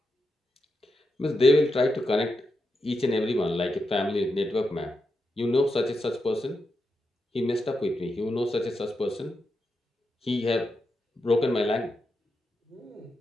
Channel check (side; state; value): both; normal; correlation 0.86